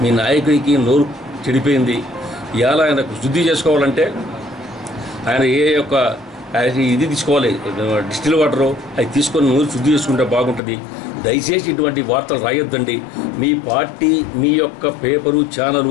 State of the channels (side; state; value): right; drops out; at 10.6 s